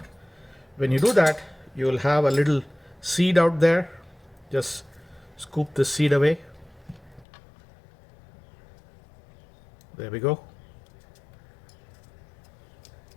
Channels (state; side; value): drops out; right; at 7.2 s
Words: When you do that, you'll have a little seed out there. Just scoop the seed away. There we go.